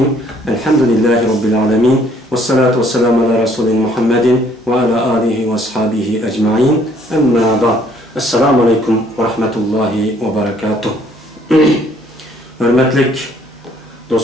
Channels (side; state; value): both; normal; correlation 0.62